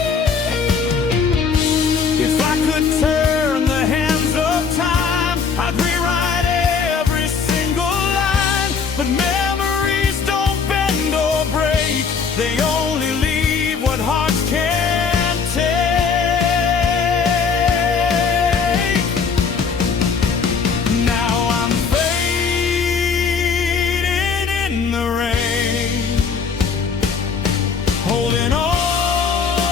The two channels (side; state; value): right; quieter; 5.7 dB